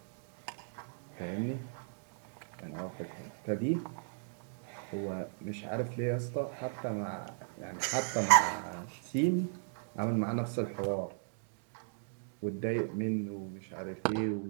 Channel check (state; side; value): silent; left; digital silence